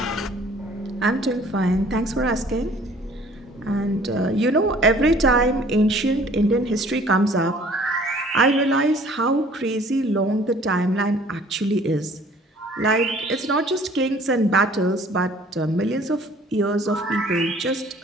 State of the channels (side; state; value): both; normal; correlation 0.54